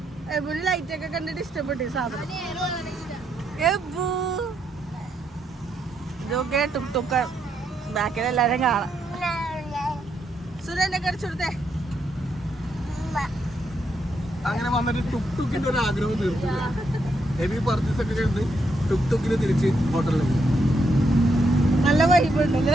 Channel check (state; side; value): normal; both; correlation 0.78